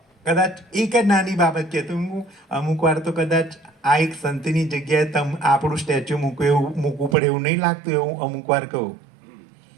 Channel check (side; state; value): left; drops out; at 7.2 s